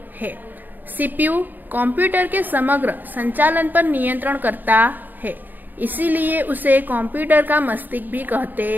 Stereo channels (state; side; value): late; left; 0.089 ms